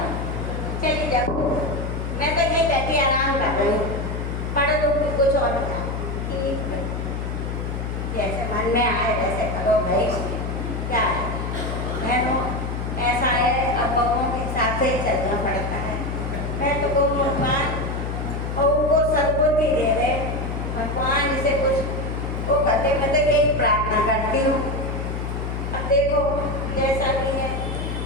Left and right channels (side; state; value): left; noise; hum, 4 dB below the sound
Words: चलिए जाओ, मैं तो यही बैठी आराम कर रही हूँ, पढ़ दूँगी कुछ और बता। ठीक है। मन में आए वैसे करो भाई, क्या है बहनों, ऐसा है अब बहूओं के हिसाब से ही चलना पड़ता है। मैं तो कहूँ भगवान बहू को सद्बुद्धि दे दे, भगवान इसे कुछ वो करते, मैं तो यही प्रार्थना करती हूँ। अब देखो जैसा भी है,